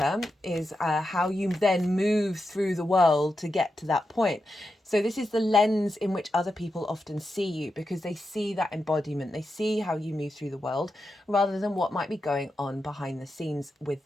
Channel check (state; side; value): normal; both; correlation 0.88